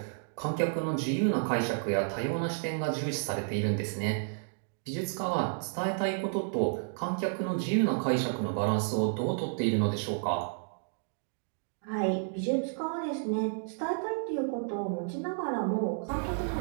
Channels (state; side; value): silent; left; digital silence